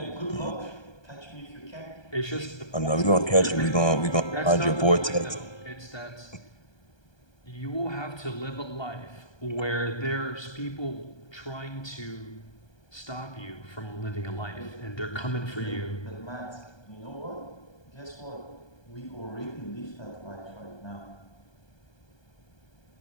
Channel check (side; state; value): right; late; 1.2 ms